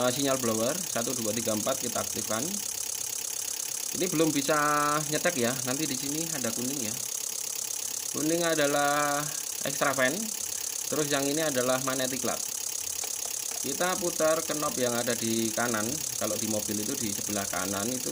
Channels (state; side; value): identical; both; correlation 1.00